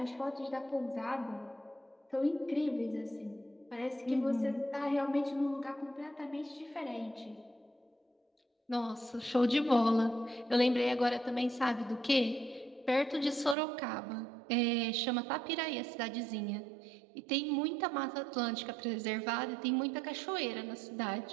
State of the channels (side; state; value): left; drops out; at 13.6 s